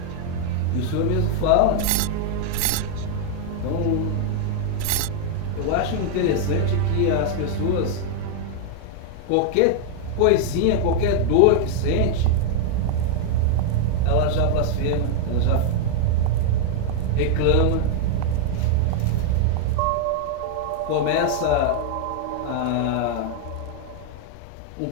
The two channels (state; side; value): different; both; correlation 0.00